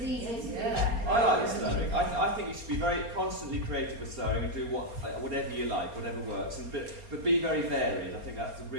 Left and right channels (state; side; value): late; left; 4.3 ms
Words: easy to do Yeah. that. I like the slurring. I think you should be very constantly creative with slurring and do whatever you like, whatever works, but be very varied. I think that's a